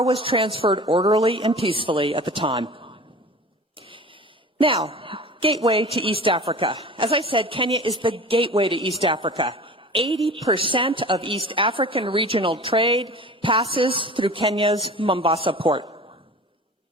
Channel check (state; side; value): normal; both; correlation 0.39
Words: was transferred orderly and peacefully at the time. Now, gateway to East Africa. As I said, Kenya is the gateway to East Africa. 80% of East African regional trade passes through Kenya's Mombasa port.